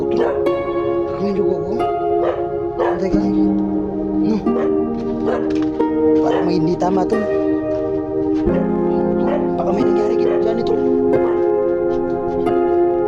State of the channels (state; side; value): identical; both; correlation 1.00